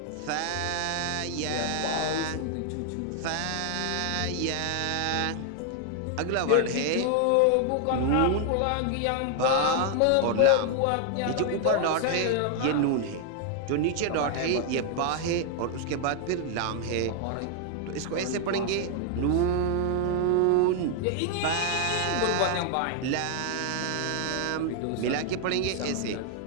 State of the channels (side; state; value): both; different; correlation 0.00